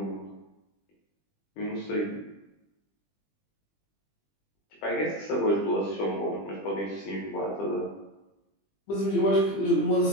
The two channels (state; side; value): late; right; 20 ms